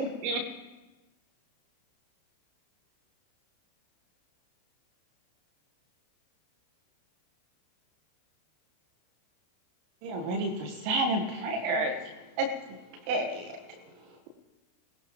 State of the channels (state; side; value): late; left; 32 ms